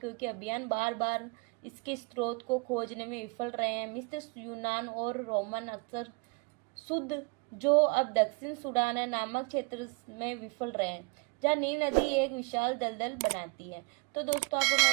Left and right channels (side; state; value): left; quieter; 32.9 dB